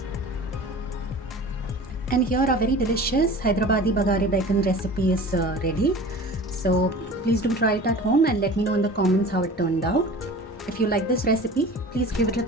And here our very delicious Hyderabadi Bagara bacon recipe is ready. So please do try it at home and let me know in the comments how it turned out. If you like this recipe, please give it a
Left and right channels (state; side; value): normal; both; correlation 0.40